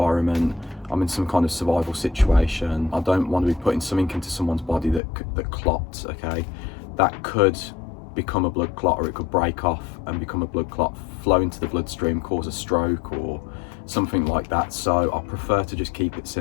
I'm in some kind of survival situation, I don't want to be putting something into someone's body that clots, okay? That could become a blood clot, or it could break off and become a blood clot, flow into the bloodstream, cause a stroke or something like that. So I prefer to just keep it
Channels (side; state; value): right; drops out; at 5.0 s